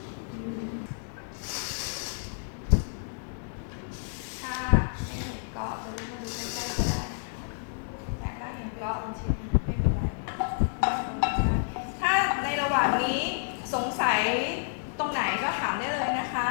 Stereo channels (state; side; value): silent; right; digital silence